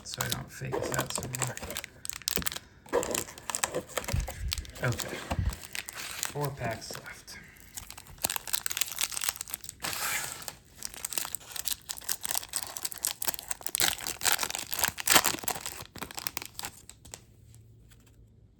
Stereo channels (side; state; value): both; identical; correlation 1.00